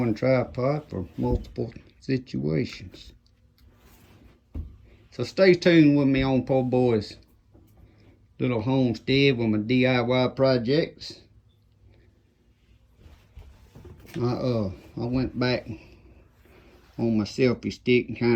tripod for multiple situations. So stay tuned with me on Po Boy's little homestead with my DIY projects. I went back on my selfie stick and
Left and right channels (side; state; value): both; identical; correlation 1.00